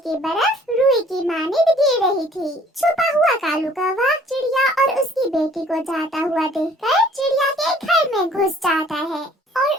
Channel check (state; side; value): normal; both; correlation 0.56